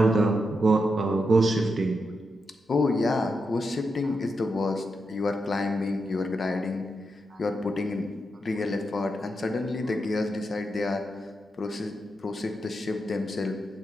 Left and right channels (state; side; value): normal; both; correlation 0.85